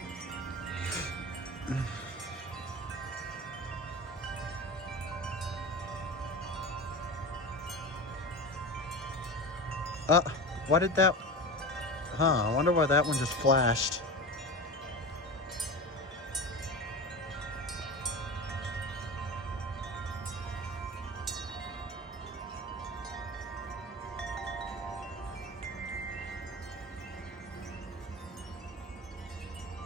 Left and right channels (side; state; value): both; normal; correlation 0.28